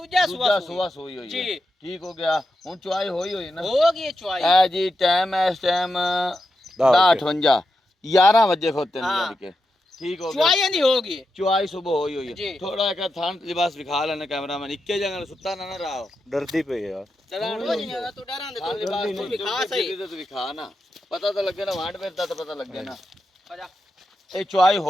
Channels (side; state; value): both; normal; correlation 0.88